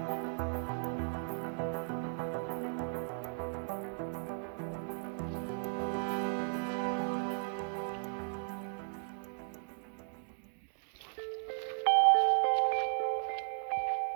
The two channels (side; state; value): left; silent; digital silence